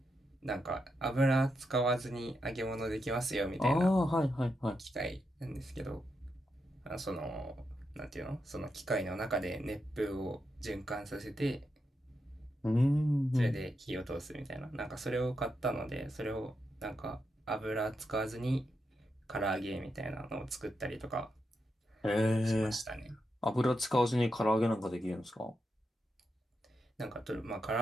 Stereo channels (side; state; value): both; normal; correlation 0.85